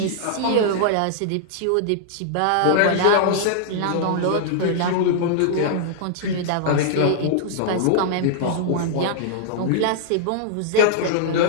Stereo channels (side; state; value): both; different; correlation -0.01